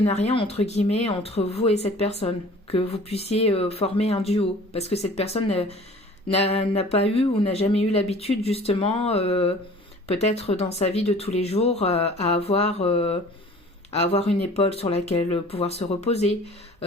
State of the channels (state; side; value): normal; both; correlation 0.47